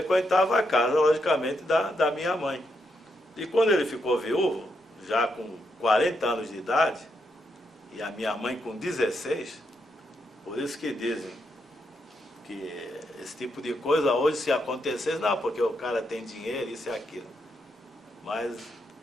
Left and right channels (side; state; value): both; normal; correlation 0.80